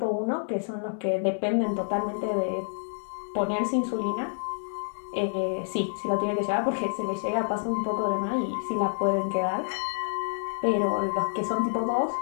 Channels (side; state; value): right; silent; 59 dB below the other